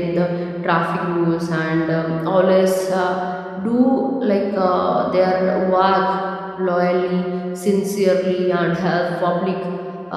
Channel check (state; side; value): identical; both; correlation 1.00